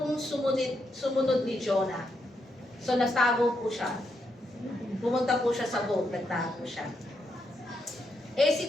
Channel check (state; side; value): normal; both; correlation 0.81